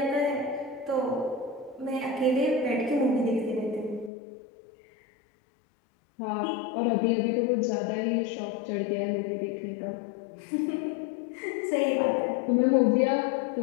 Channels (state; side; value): drops out; right; at 4.1 s